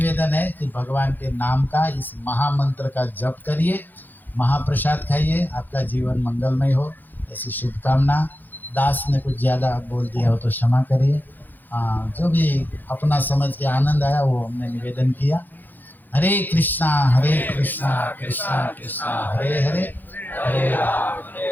है कि भगवान के नाम का, इस महामंत्र का जप करिए, महाप्रसाद खाइए, आपका जीवन मंगलमय हो, ऐसी शुभकामना। दास ने कुछ ज़्यादा बोल दिया हो तो क्षमा करिए। जो भी अपना समझ के आनंद आया वो हमने निवेदन किया। हरे कृष्णा कृष्णा कृष्णा हरे हरे, हरे राम।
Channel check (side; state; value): right; late; 0.087 ms